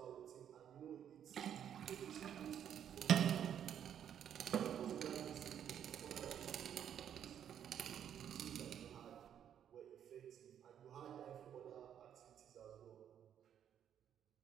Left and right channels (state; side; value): quieter; left; 9.4 dB